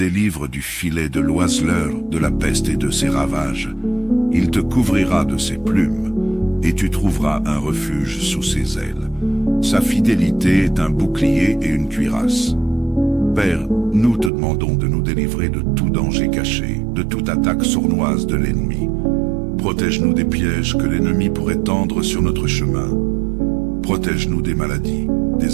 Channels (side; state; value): left; drops out; at 14.3 s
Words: du filet de l'oiseleur, de la peste et de ses ravages. Il te couvrira de ses plumes, et tu trouveras un refuge sous ses ailes. Sa fidélité est un bouclier et une cuirasse. Père, nous te demandons de nous délivrer de tout danger caché, de toute attaque sournoise de l'ennemi. Protège-nous des pièges que l'ennemi pourrait tendre sur notre chemin. Protège-nous des maladies,